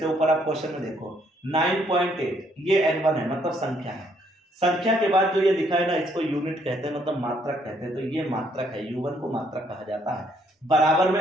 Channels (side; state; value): both; normal; correlation 0.69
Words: ऊपर आप क्वेश्चन में देखो 9.8, ये N1 है, मतलब संख्या है। संख्या के बाद जो ये लिखा है ना, इसको यूनिट कहते हैं, मतलब मात्रक कहते हैं। तो ये मात्रक है, U1 को मात्रक कहा जाता है। बराबर